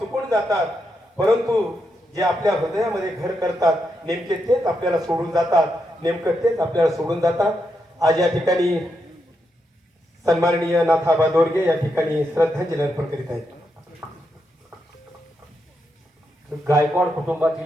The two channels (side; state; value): both; normal; correlation 0.83